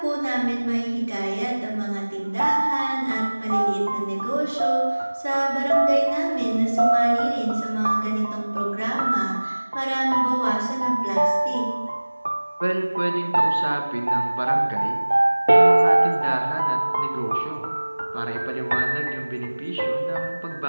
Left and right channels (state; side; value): inverted; both; correlation -1.00